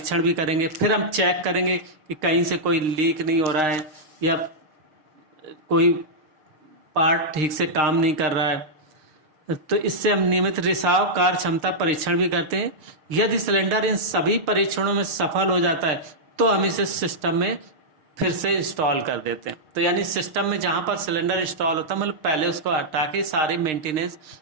भी करेंगे, फिर हम चेक करेंगे कि कहीं से कोई लीक नहीं हो रहा है या कोई पार्ट ठीक से काम नहीं कर रहा है। तो इससे हम नियमित रिसाव, कार्य क्षमता परीक्षण भी करते हैं। यदि सिलेंडर इन सभी परीक्षणों में सफल हो जाता है तो हम इसे सिस्टम में फिर से इंस्टॉल कर देते हैं। तो यानी सिस्टम में जहाँ पर सिलेंडर इंस्टॉल होता है, मतलब पहले उसको हटा के सारे मेंटेनेंस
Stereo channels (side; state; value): left; late; 6.5 ms